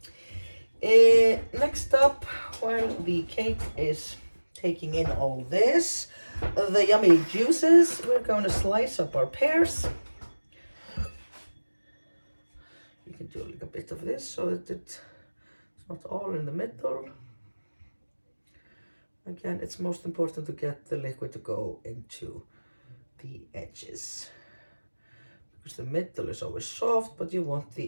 Next up, while the cake is taking in all this, the yummy juices, we're going to slice up our pears. You can do like a bit of this so that it's not all in the middle. Again, it's most important to get the liquid to go into the edges, because the middle is always soft, but you want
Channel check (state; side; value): inverted; both; correlation -1.00